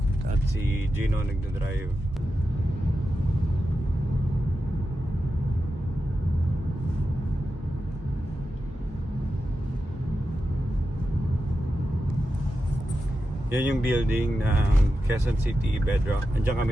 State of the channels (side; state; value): both; normal; correlation 0.90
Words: At si Gino nagdadrive. Yan yung building ng Quezon City Bedrock. Andiyan